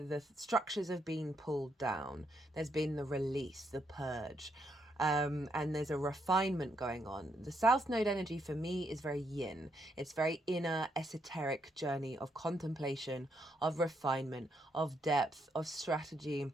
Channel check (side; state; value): both; normal; correlation 0.77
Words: structures have been pulled down. There's been the release, the purge, and there's a refinement going on. The South Node energy for me is very yin. It's very inner, esoteric journey of contemplation, of refinement, of depth, of strategy.